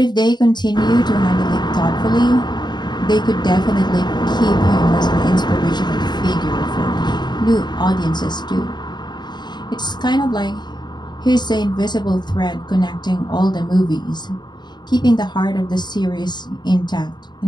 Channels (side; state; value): right; late; 0.21 ms